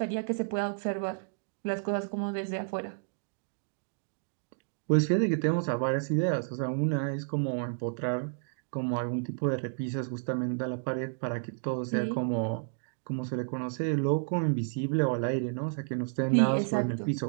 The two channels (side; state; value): left; silent; digital silence